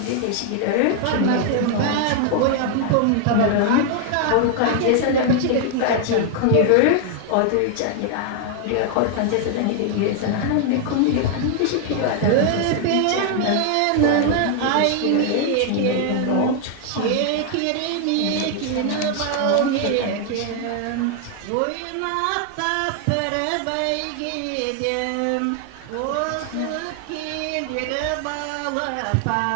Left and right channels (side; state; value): both; different; correlation 0.00